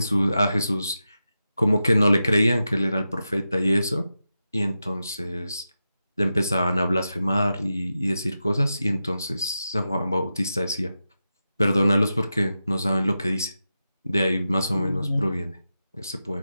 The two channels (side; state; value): both; inverted; correlation -0.90